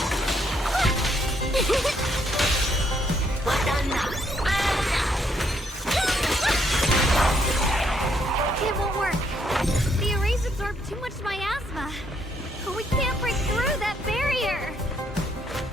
It won't work. The arrays absorb too much miasma. We can't break through that barrier.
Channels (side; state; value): both; normal; correlation 0.72